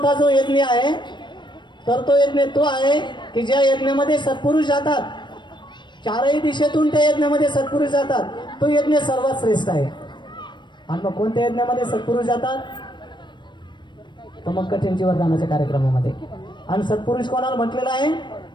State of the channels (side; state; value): right; late; 0.22 ms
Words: जो यज्ञ आहे तर तो यज्ञ तो आहे की ज्या यज्ञामध्ये सत्पुरुष जातात, चारही दिशेतून त्या यज्ञामध्ये सत्पुरुष जातात, तो यज्ञ सर्वात श्रेष्ठ आहे. आणि मग कोणत्या यज्ञामध्ये सत्पुरुष जातात तर मग कठीण जीवनदानाच्या कार्यक्रमामध्ये. आणि सत्पुरुष कोणाला म्हटलेलं आहे